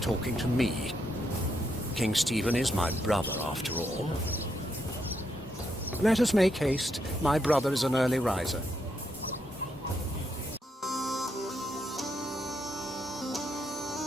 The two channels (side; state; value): both; normal; correlation 0.79